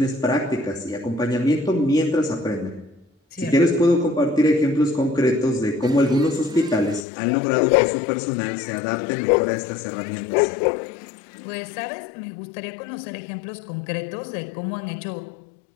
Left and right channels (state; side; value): drops out; right; at 7.1 s